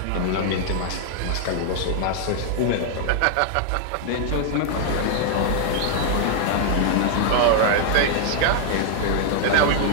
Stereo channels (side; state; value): both; different; correlation -0.01